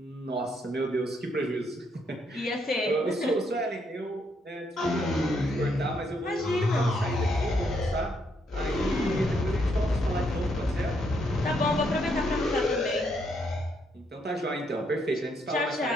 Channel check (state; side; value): normal; both; correlation 0.74